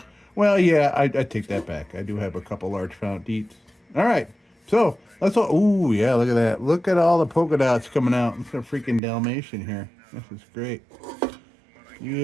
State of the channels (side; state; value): left; drops out; at 9.0 s